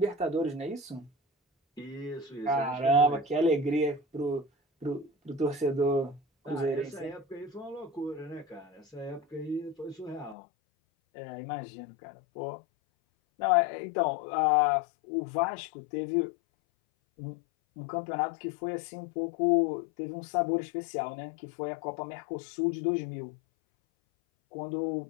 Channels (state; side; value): drops out; right; at 10.4 s